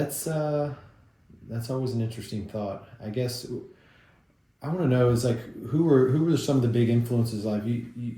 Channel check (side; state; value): both; identical; correlation 1.00